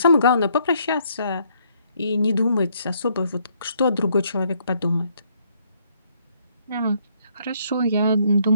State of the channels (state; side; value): inverted; both; correlation -0.68